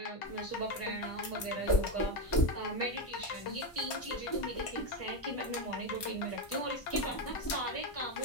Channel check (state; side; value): late; right; 1.5 ms